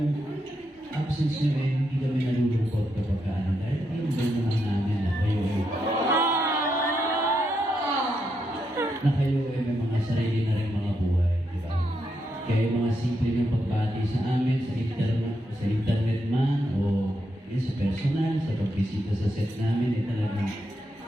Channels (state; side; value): normal; both; correlation 0.82